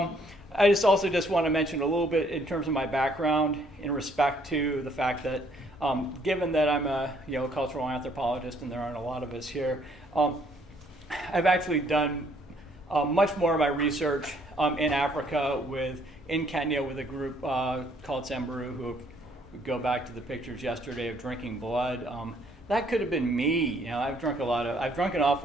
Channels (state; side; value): normal; both; correlation 0.65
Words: just want to mention a little bit in terms of my background in respect to the fact that given that I'm a cultural anthropologist and there aren't a lot of us here, I've actually done much more of my research in Africa in Kenya with a group called Samburu, who go back to the pictures yesterday of drinking blood. That could have been me. I've drunk an